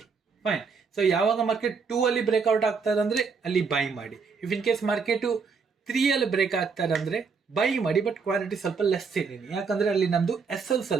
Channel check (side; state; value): left; quieter; 5.3 dB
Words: ಫೈನ್. ಸೊ ಯಾವಾಗ ಮಾರ್ಕೆಟ್ 2 ಅಲ್ಲಿ ಬ್ರೇಕ್ಔಟ್ ಆಗ್ತಾರೆ ಅಂದ್ರೆ ಅಲ್ಲಿ ಬೈ ಮಾಡಿ. ಇಫ್ ಇನ್ ಕೇಸ್ ಮಾರ್ಕೆಟು 3 ಅಲ್ಲಿ ಬ್ರೇಕ್ ಆಗ್ತಾರೆ ಅಂದ್ರೆ ಬೈ ಮಾಡಿ, ಬಟ್ ಕ್ವಾಲಿಟಿ ಸ್ವಲ್ಪ ಲೆಸ್ ಇದ್ದೀನಿ, ಯಾಕಂದ್ರೆ ಅಲ್ಲಿ ನಮ್ದು SL